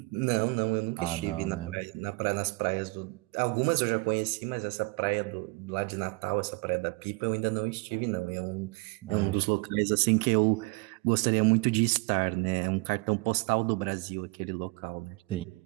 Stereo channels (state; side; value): quieter; left; 27.2 dB